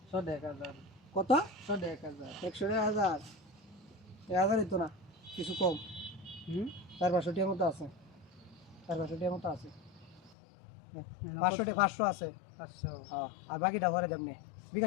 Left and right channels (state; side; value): drops out; right; at 10.4 s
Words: 100,000 কত 100,000 100,000 1000 তো না কিছু কম 400 টিয়ার মতো আছে 400 টিয়ার মতো আছে 500 আছে 500 হ্যাঁ আর বাকিটা ভরে দেবনে